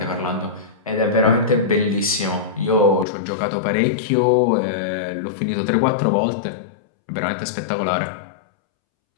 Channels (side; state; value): right; drops out; at 3.1 s